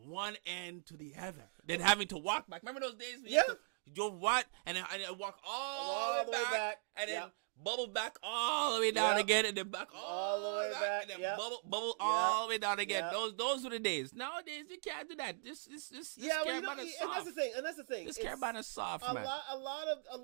one end to the other. Then having to walk back. Remember those days? You drove what? And I walk all the way back. And then bubble back all the way down again. And then back all the way back. And then bubble all the way down again. Those were the days. Nowadays, you can't do that. This Caribana is soft. And that's the thing. This Caribana is soft, man. A lot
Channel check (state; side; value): silent; left; digital silence